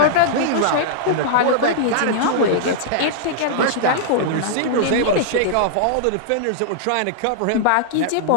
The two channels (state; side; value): different; both; correlation -0.01